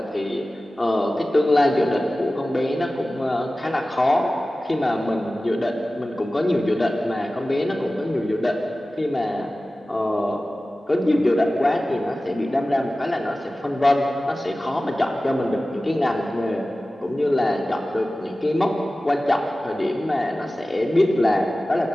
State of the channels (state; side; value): normal; both; correlation 0.96